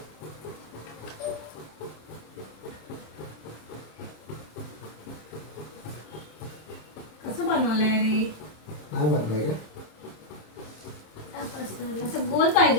कसं बनवलंय रे? नाही बनलाय का? असं गोल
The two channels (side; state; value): right; late; 26 ms